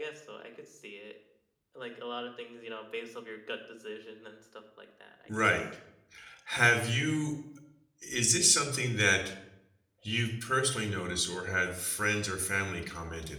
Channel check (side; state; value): both; identical; correlation 1.00